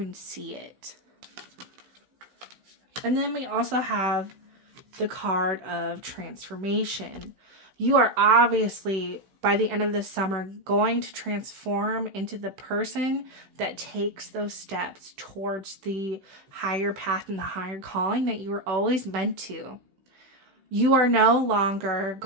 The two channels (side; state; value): left; late; 16 ms